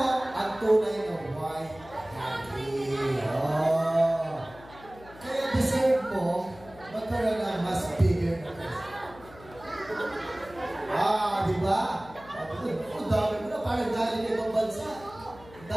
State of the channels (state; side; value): noise; left; hum, 20 dB below the sound